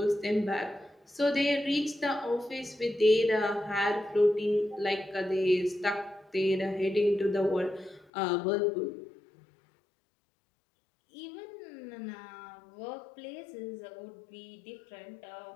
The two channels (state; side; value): drops out; right; at 8.1 s